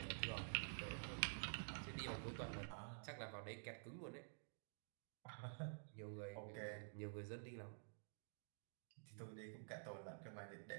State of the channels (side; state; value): left; silent; digital silence